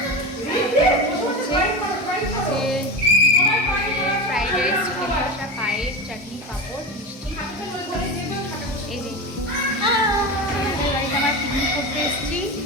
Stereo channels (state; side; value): normal; both; correlation 0.23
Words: ফ্রাইড রাইস, চিকেন কষা, পায়েস, চাটনি, পাঁপড়, মিষ্টি। এই যে বাড়িতে আমরা পিকনিক করতে এসেছি।